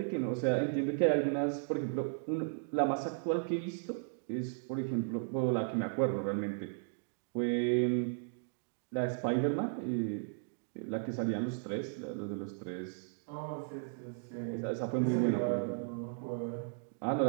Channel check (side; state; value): left; silent; digital silence